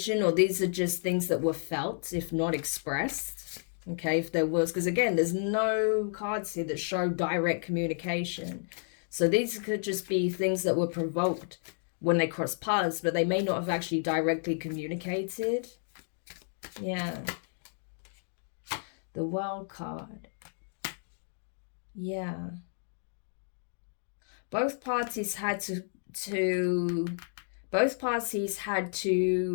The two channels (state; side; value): silent; right; digital silence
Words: or these are just things that were felt, if not expressed. Okay, if there was, because again, there's no cards here that show direct communication. So these could just be things that were provoked when they cross paths, but they may not have actually directly communicated. Yeah. The World card. Yeah. Both parties had to